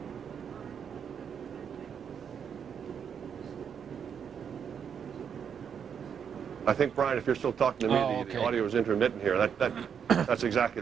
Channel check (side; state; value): left; quieter; 7.5 dB